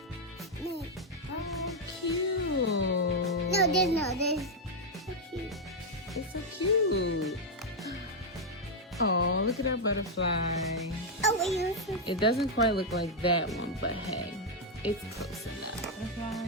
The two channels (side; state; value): both; normal; correlation 0.00